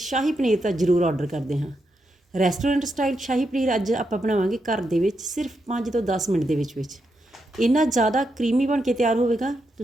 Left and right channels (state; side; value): normal; both; correlation 0.83